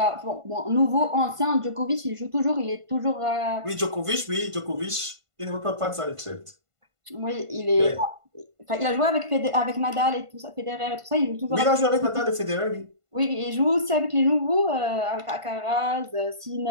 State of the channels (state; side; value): late; left; 1.5 ms